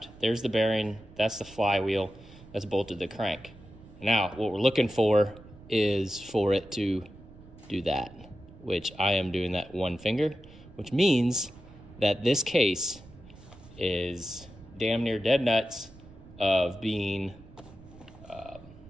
There's the bearing. That's the flywheel that's bolted to the crank. Now, what we're looking for is for it to do that, which I am doing that one finger, which means that this case is damn near dead nuts of being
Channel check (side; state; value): right; noise; rumble, 20 dB below the sound